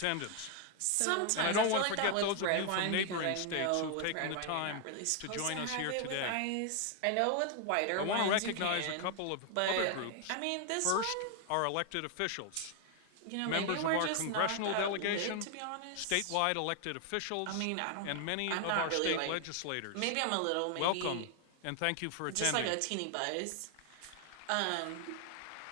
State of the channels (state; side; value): different; both; correlation 0.00